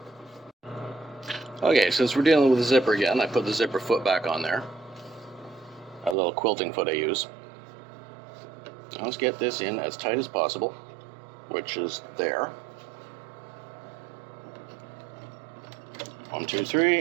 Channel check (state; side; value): drops out; left; at 6.2 s